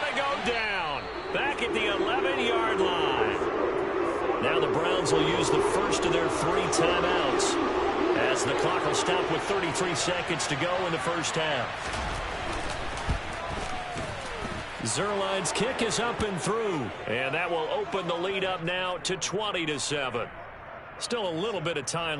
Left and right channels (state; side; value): identical; both; correlation 1.00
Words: to go down. Back at the 11-yard line. Now the Browns will use the first of their 3 timeouts as the clock will stop with 33 seconds to go in the first half. Zerline's kick is up and through, and that will open the lead up now to 20-7. Still a little bit of